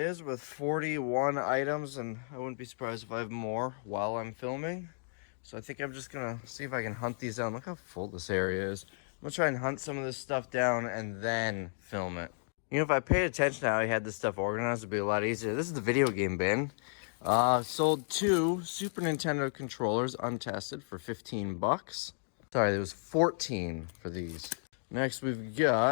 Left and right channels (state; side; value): silent; right; digital silence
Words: with 41 items, and I wouldn't be surprised if I have more while I'm filming. So I think I'm just going to see if I can hunt these down. Look how full this area is. I'm going to try and hunt some of this stuff down and then film it. You know, if I paid attention to how I had this stuff organized, it'd be a lot easier. This is the video game bin. Sold 2 Super Nintendo controllers untested for 15 bucks. Sorry, there was 14 for these. Next, we've